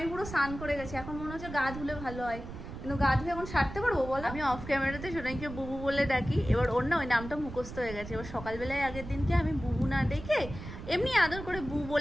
পুরো স্নান করে গেছি। এখন মনে হচ্ছে গা ধুলে ভালো হয়, কিন্তু গা ধুলে এখন সারতে পারবো বলো? আমি অফ ক্যামেরাতে সোনাইকে বুবু বলে ডাকি, এবার ওর না ওই নামটা মুখস্থ হয়ে গেছে। এবার সকালবেলায় আগের দিনকে আমি বুবু না ডেকে এমনি আদর করে বু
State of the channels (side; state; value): right; noise; rumble, 11 dB below the sound